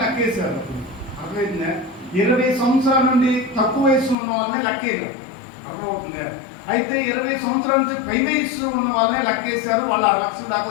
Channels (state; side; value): drops out; right; at 4.2 s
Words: లెక్కేశారు. అర్థమైందా? 20 సంవత్సరాల నుండి తక్కువ వయసు ఉన్న వాళ్ళని లెక్కేయరు. అర్థమవుతుందా? అయితే 20 సంవత్సరాల నుంచి పై వయసు ఉన్న వాళ్ళనే లెక్కేశారు. వాళ్ళు 6 లక్షల దాకా